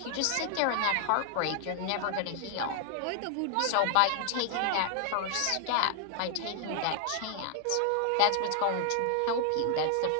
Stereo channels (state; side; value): different; both; correlation 0.00